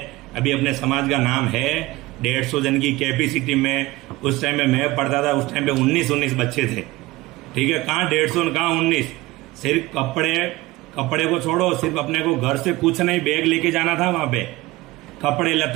अभी अपने समाज का नाम है, 150 जन की कैपेसिटी में। उस टाइम में मैं पढ़ता था, उस टाइम पे 19 बच्चे थे, ठीक है, कहाँ 150 कहाँ 19। सिर्फ कपड़े को छोड़ो, सिर्फ अपने को घर से कुछ नहीं, बैग लेके जाना था वहां पे, कपड़े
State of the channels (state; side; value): quieter; left; 19.7 dB